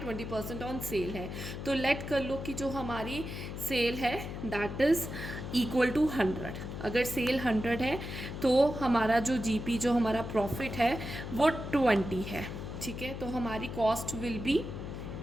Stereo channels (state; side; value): noise; left; hum, 7 dB below the sound